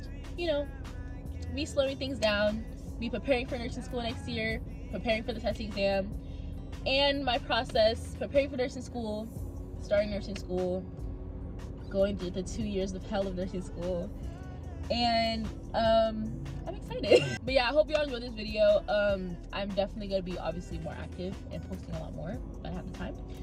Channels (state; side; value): identical; both; correlation 1.00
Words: you know, me slowing things down, me preparing for nursing school next year, preparing for the testing exam, and my process, preparing for nursing school, starting nursing school, going through the 2 years of hell of nursing school, and I'm excited. But yeah, I hope y'all enjoyed this video. I'm definitely gonna be obviously more active and posting a lot more when I have the time.